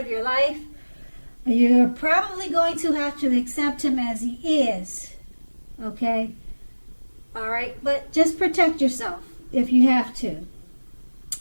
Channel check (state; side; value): inverted; both; correlation -1.00